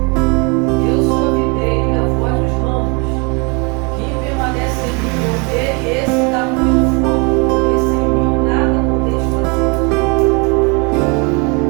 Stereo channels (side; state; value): left; quieter; 31.4 dB